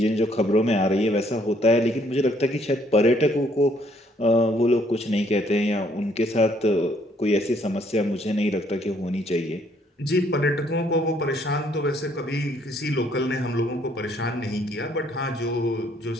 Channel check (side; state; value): both; normal; correlation 0.66